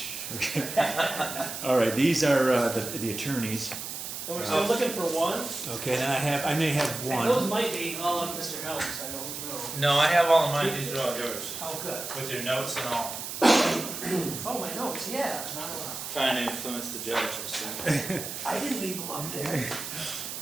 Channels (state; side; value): noise; right; hiss, 7 dB below the sound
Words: okay. All right, these are the attorneys. And we're still looking for one? Okay, then I may have And those one. might be all of Mr. Helms, I don't know. No, I have all of mine, these are all yours, Oh, good. with your notes and all. Oh, my notes, yeah, not a lot. Trying to influence the judge, I see. I didn't leave them up there.